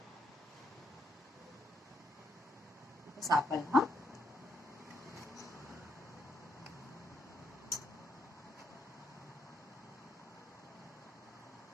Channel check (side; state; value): both; normal; correlation 0.75